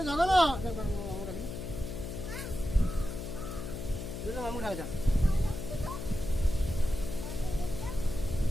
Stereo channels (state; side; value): noise; left; hum, 7 dB below the sound